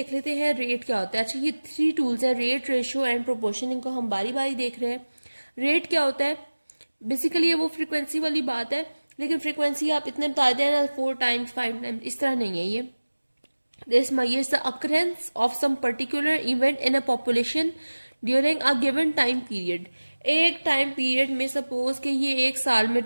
लेते हैं रेट क्या होता है। अच्छा, ये 3 टूल्स हैं, रेट, रेशो एंड प्रोपोर्शन। इनको हम बारी बारी देख रहे हैं। रेट क्या होता है? बेसिकली ये वो फ्रीक्वेंसी वाली बात है, लेकिन फ्रीक्वेंसी आप इतने बता दें ना 4 टाइम्स 5 टाइम्स, इस तरह नहीं है ये। This measures the occurrence of some particular event in a population during a given time period. एक टाइम पीरियड में सपोज कि ये एक साल में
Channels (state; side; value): inverted; both; correlation -1.00